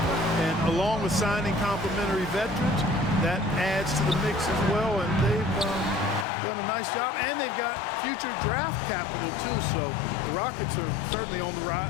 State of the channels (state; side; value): drops out; right; at 6.2 s